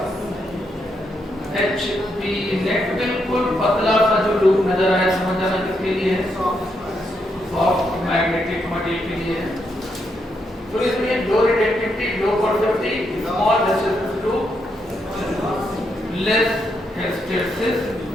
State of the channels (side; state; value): both; normal; correlation 0.79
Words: एच पी नेट बिल्कुल पतला सा जो लूप नजर आया, समझ आना किसके लिए है? सॉफ्ट मैग्नेटिक मटेरियल के लिए है। तो इसमें low retentivity, low coercivity, small hysteresis loop, less hysteresis